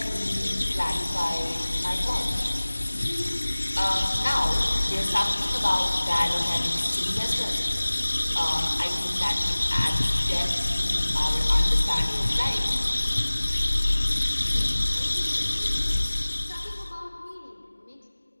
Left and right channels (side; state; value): both; inverted; correlation -1.00